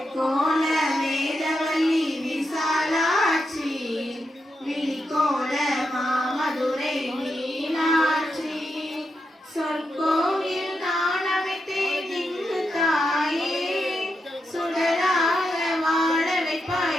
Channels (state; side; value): normal; both; correlation 0.85